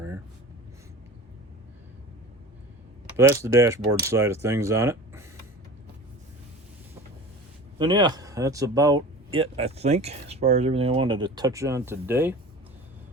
here. But that's the dashboard side of things on it. And yeah, that's about it, I think, as far as everything I wanted to touch on today.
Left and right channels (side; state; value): both; normal; correlation 0.36